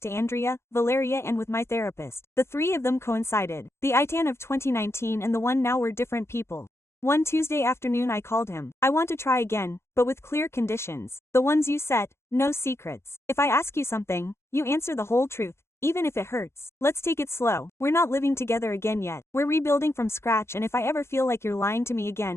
to Andrea, Valeria and with my therapist. The 3 of them coincided. The Itan of 2019 and the one now were different people. One Tuesday afternoon I called him. I want to try again, but with clear conditions. The ones you set, no secrets. If I ask you something, you answer the whole truth, even if it hurts. Let's take it slow. We're not living together again yet. We're rebuilding from scratch and if I ever feel like you're lying to me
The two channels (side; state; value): right; late; 0.13 ms